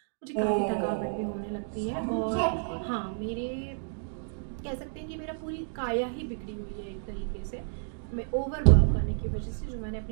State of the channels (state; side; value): silent; left; digital silence